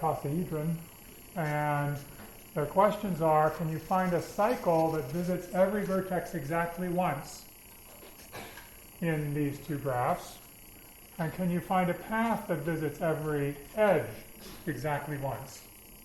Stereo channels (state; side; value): identical; both; correlation 1.00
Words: And their questions are, can you find a cycle that visits every vertex exactly once in these two graphs? And can you find a path that visits every edge exactly once